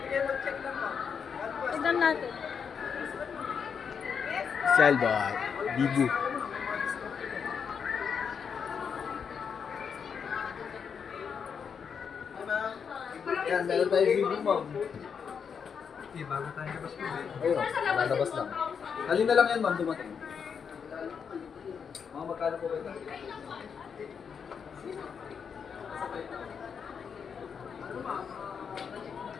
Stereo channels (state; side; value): quieter; right; 6.7 dB